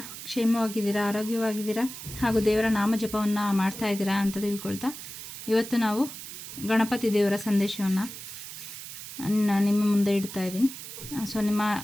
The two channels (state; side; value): noise; right; hiss, 11 dB below the sound